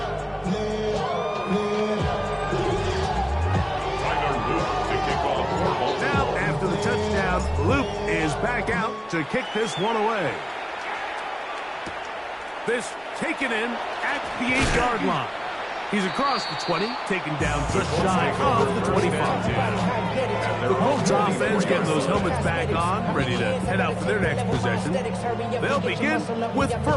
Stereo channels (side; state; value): both; identical; correlation 1.00